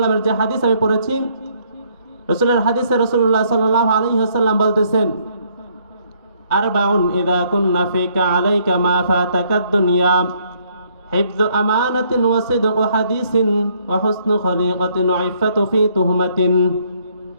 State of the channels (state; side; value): inverted; both; correlation -0.68